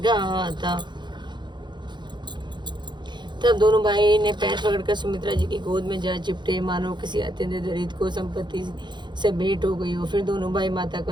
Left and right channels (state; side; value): late; left; 0.22 ms